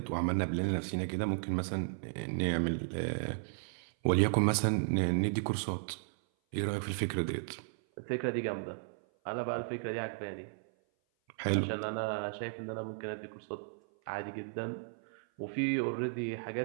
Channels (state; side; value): silent; left; 55 dB below the other